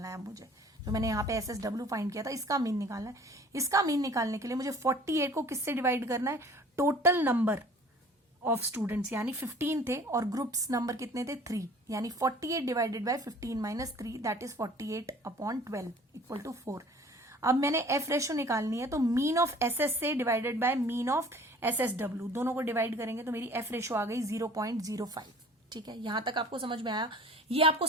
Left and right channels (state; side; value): normal; both; correlation 0.49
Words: है। मुझे जो मैंने यहाँ पे SSW फाइंड किया था, इसका मीन निकालना है। इसका मीन निकालने के लिए मुझे 48 को किससे डिवाइड करना है, टोटल नंबर ऑफ स्टूडेंट्स यानी 15 थे और ग्रुप्स नंबर कितने थे, 3, यानी 48 divided by 15 minus 3 that is 48/12 equal to 4। अब मैंने F रेशो निकालनी है, तो mean of SSA divided by mean of SSW, दोनों को डिवाइड करेंगे तो मेरी F रेशो आ गई 0.05। ठीक है, यहां तक आपको समझ में आया। ये आपको